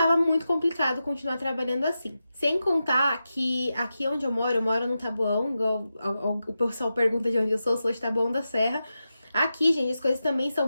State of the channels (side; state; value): both; inverted; correlation -0.90